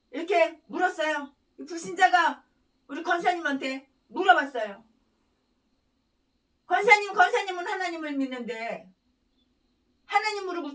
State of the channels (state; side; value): identical; both; correlation 1.00